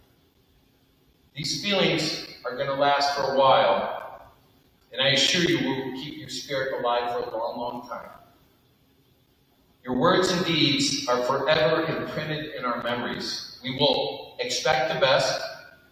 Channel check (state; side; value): identical; both; correlation 1.00